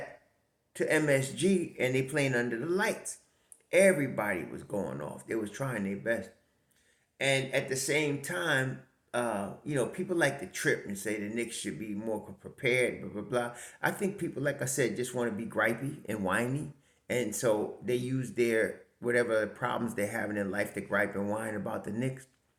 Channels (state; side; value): identical; both; correlation 1.00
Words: to MSG and they playing under the lights. Everybody was going off. They was trying their best. And at the same time, people like to trip and say the Knicks should be more prepared, blah, blah, blah. I think people, like I said, just want to be gripey and whiny. And so they use their whatever problems they have in their life to gripe and whine about the Knicks.